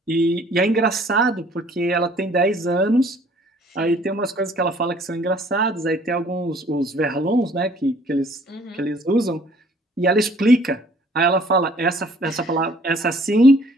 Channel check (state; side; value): normal; both; correlation 0.57